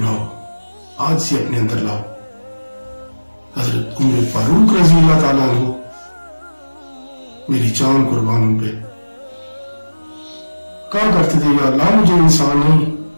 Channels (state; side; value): inverted; both; correlation -1.00